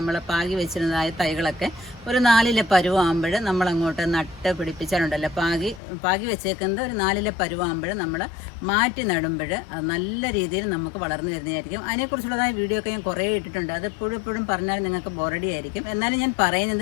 പാകി വെച്ചിരുന്നതായ തൈകളൊക്കെ ഒരു 4 പരുവാകുമ്പോൾ നമ്മളങ്ങോട്ട് നട്ട് പിടിപ്പിച്ചാലുണ്ടല്ലോ, പാകി വെച്ചേക്കുന്നത് ഒരു 4 പരുവാകുമ്പോൾ നമ്മൾ മാറ്റി നടുമ്പോൾ അത് നല്ല രീതിയിൽ നമുക്ക് വളർന്നു വരുന്നതായിരിക്കും. അതിനെക്കുറിച്ചുള്ളതായ വീഡിയോ ഒക്കെ ഞാൻ കുറേ ഇട്ടിട്ടുണ്ട്. അത് എപ്പോഴും പറഞ്ഞാൽ നിങ്ങൾക്ക് ബോറടി ആയിരിക്കും. എന്നാലും ഞാൻ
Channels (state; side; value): drops out; right; at 5.8 s